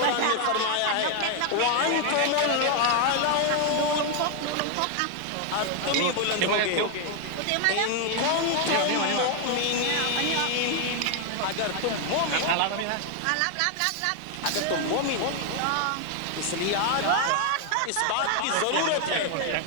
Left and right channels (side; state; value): both; different; correlation 0.00